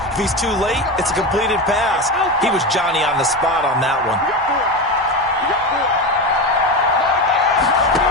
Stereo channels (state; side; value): normal; both; correlation 0.19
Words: If he's too late, it's a completed pass. He was Johnny on the spot on that one.